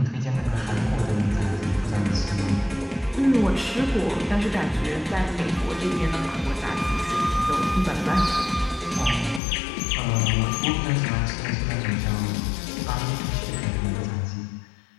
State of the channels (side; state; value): right; drops out; at 9.4 s